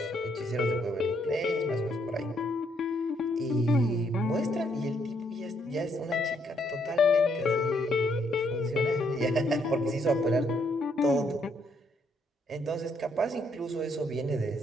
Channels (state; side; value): normal; both; correlation 0.72